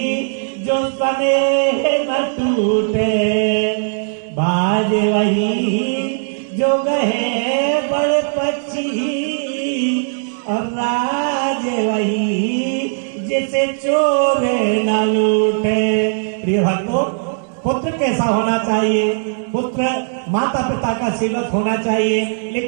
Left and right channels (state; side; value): silent; left; digital silence